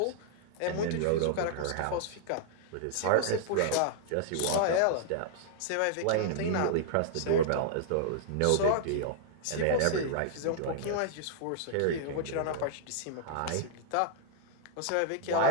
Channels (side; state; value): both; different; correlation -0.01